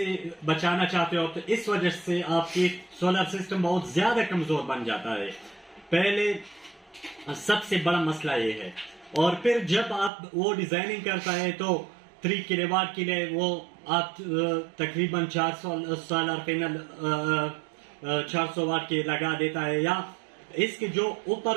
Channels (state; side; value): drops out; left; at 10.1 s